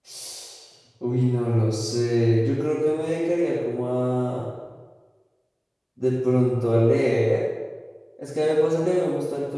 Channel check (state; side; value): identical; both; correlation 1.00